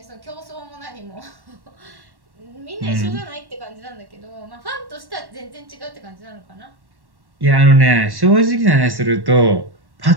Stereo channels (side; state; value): left; late; 1.1 ms